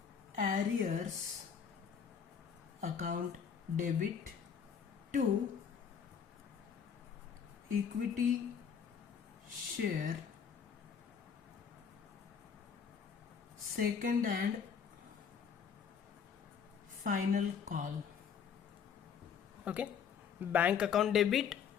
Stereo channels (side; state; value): right; quieter; 7.1 dB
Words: arrears account debit to equity share second and final call. Okay, bank account debit